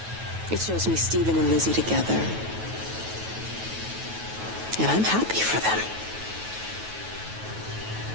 It shows me Stephen and Lizzie together. And I'm happy for them.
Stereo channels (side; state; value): left; late; 9.2 ms